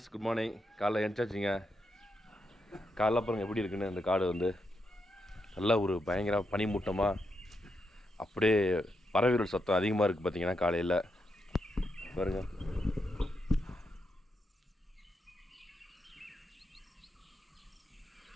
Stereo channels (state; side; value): normal; both; correlation 0.82